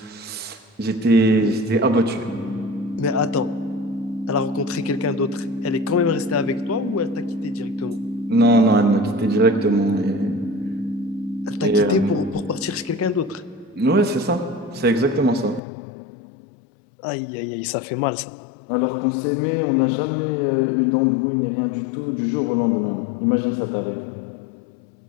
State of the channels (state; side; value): drops out; right; at 15.6 s